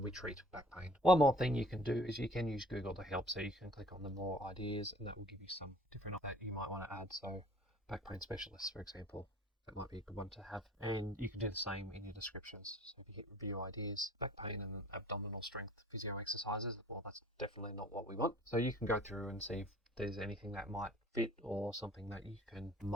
we treat back pain. One more thing you can do is you can use Google to help. So you can click on the more ideas, and that will give you some different that you might want to add. So back pain specialist, for example, that might be a good one to have. And you can do the same in your descriptions. So if you hit review ideas, back pain and abdominal strength physio exercises, well, that's definitely not what we want. So you can go through and see if there's anything that might fit, or something that you can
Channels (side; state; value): both; normal; correlation 0.51